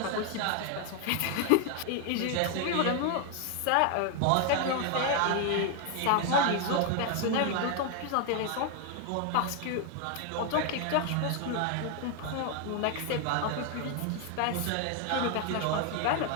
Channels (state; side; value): different; both; correlation 0.01